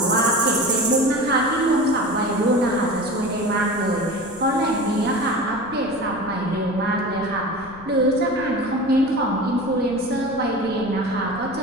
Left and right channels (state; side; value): noise; left; rumble, 19 dB below the sound